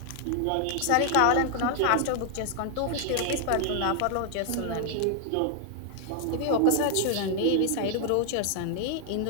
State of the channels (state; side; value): different; both; correlation 0.00